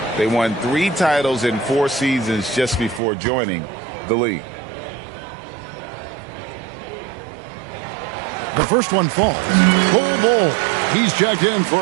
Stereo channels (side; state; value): left; drops out; at 3.0 s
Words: They won 3 titles in 4 seasons just before joining the league. The first one falls. Full ball. He's checked in